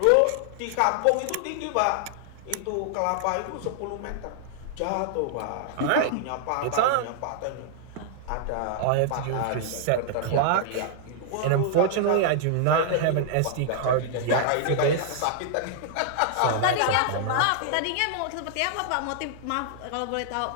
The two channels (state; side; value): different; both; correlation 0.00